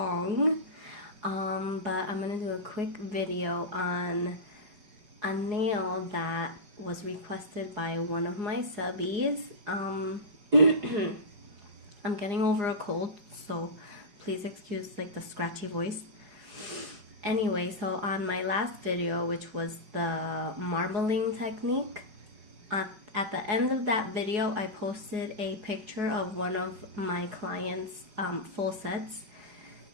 But I'm gonna do a quick video on a nail that was requested by one of my subbies. I'm getting over a cold, so please excuse like the scratchy voice. Anyway, so on my last video, which was the marbling technique, at the end of that video, I posted a picture of one of my clients' full sets,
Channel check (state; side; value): late; left; 4.8 ms